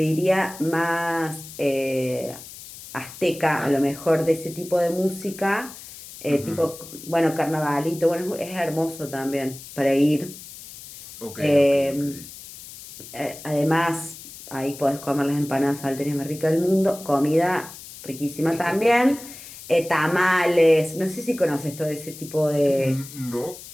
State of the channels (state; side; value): noise; left; hiss, 15 dB below the sound